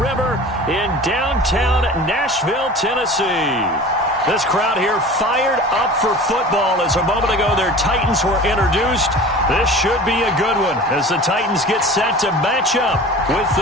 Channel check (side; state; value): both; normal; correlation 0.39